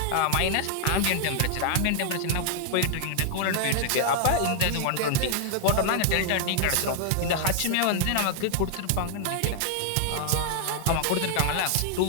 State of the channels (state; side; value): different; both; correlation -0.01